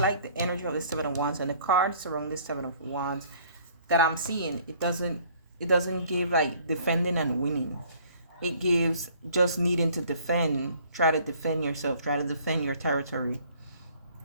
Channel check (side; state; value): both; inverted; correlation -0.57